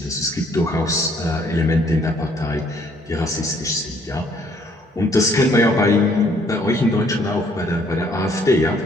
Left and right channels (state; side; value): normal; both; correlation 0.64